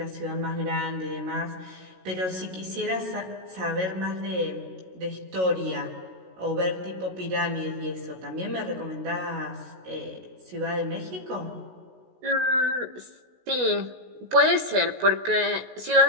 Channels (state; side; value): late; left; 16 ms